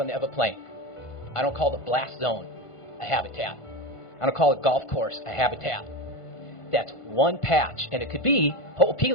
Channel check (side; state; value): right; late; 1.5 ms